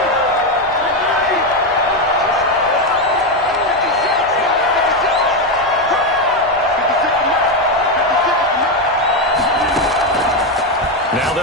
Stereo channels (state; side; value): normal; both; correlation 0.08